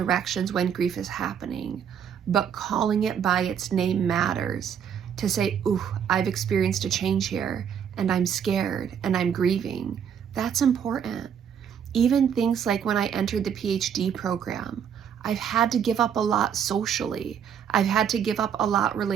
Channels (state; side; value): quieter; left; 8.1 dB